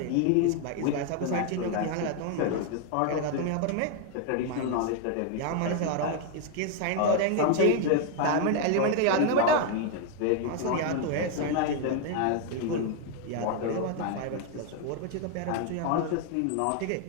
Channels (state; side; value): different; both; correlation 0.01